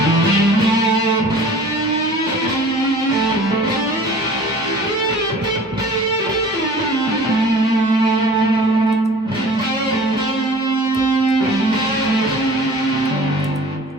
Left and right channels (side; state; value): both; normal; correlation 0.45